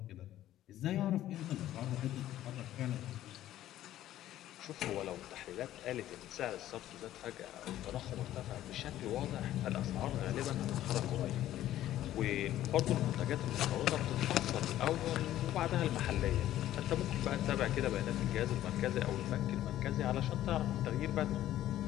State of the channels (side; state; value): right; quieter; 13.2 dB